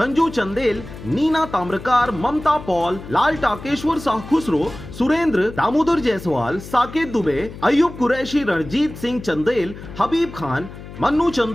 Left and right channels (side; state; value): left; noise; hum, 14 dB below the sound